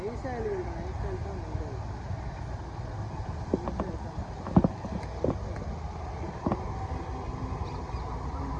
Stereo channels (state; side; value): identical; both; correlation 1.00